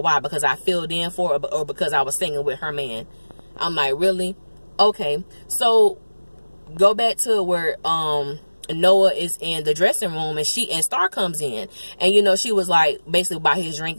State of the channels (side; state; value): both; inverted; correlation -1.00